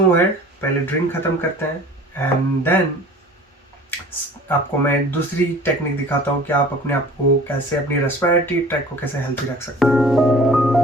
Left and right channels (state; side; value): normal; both; correlation 0.46